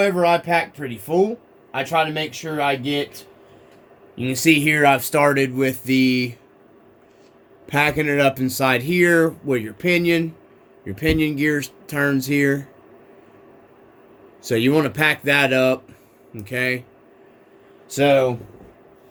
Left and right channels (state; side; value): identical; both; correlation 1.00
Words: I pack pretty full. I try to make sure I get... You can see here I've started with the... packing it up inside here where your pinion gear turns here. So you want to pack that up. Okay. So...